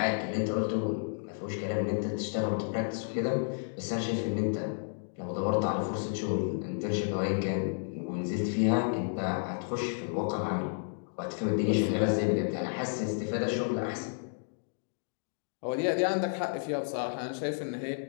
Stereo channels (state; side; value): silent; right; digital silence